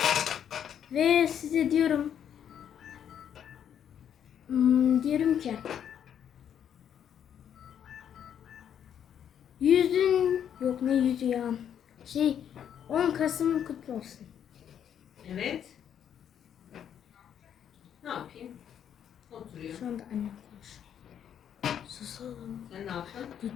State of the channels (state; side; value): quieter; right; 9.1 dB